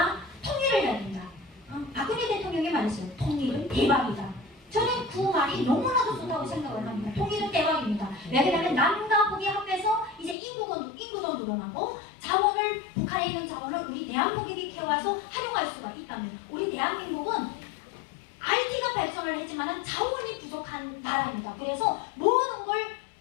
통일을 해야 된다. 박근혜 대통령이 말했어요. 통일은 대박이다. 저는 그 말이 너무나도 좋다고 생각을 합니다. 통일은 대박입니다. 왜냐하면 남과 북이 합해서 이제 인구도 늘어나고 자원을 북한에 있는 자원을 우리 대한민국에 캐와서 활용할 수가 있다면 우리 대한민국은 IT가 발전을 했지만 자원이 부족한 나라입니다. 그래서 모든 걸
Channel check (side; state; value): right; drops out; at 10.4 s